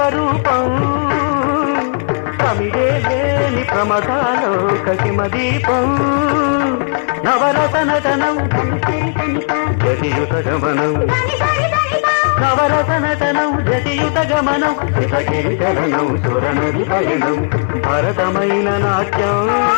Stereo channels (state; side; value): silent; right; digital silence